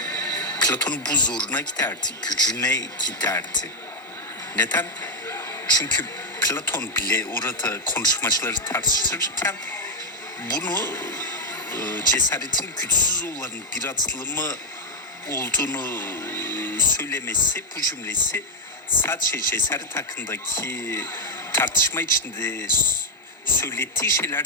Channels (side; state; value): both; normal; correlation 0.01